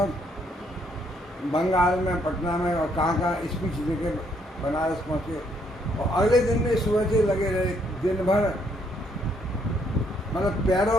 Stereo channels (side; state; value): both; normal; correlation 0.70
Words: बंगाल में, पटना में और कहाँ स्पीच देके बनारस पहुँचे, और अगले दिन में सुबह से लगे रहे दिन भर। मतलब